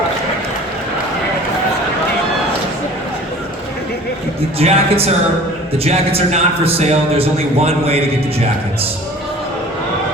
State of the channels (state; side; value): normal; both; correlation 0.45